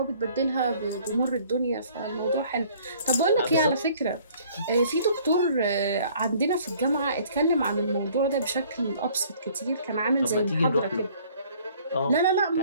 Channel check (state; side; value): inverted; both; correlation -0.57